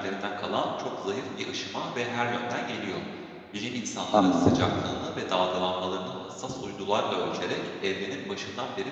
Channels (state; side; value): identical; both; correlation 1.00